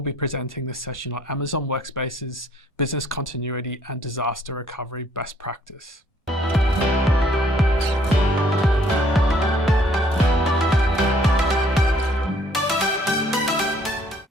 be presenting this session on Amazon WorkSpaces Business Continuity and Disaster Recovery Best Practice.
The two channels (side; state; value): both; normal; correlation 0.62